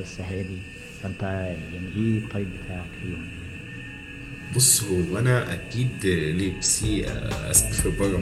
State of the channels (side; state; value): both; identical; correlation 1.00